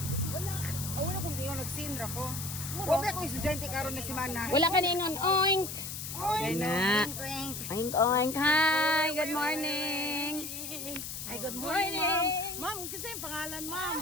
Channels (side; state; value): left; noise; hiss, 7 dB below the sound